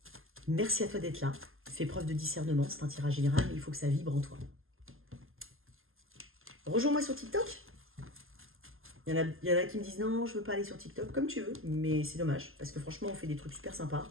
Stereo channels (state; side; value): late; left; 0.60 ms